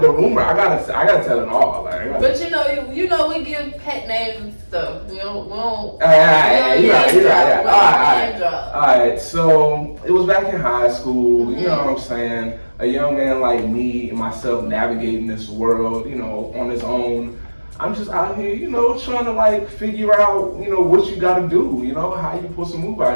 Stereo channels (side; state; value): both; inverted; correlation -1.00